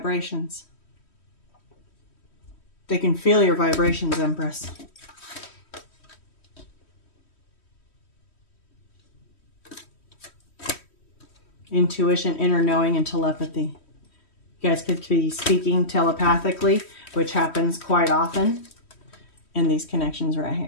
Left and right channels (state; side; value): late; right; 3.1 ms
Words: They can feel your vibrations, Empress. Intuition, inner knowing, and telepathy. You guys could be speaking telepathically, which happens quite often in these connections right